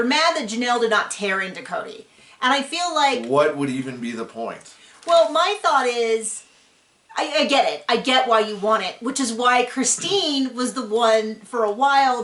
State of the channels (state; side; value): identical; both; correlation 1.00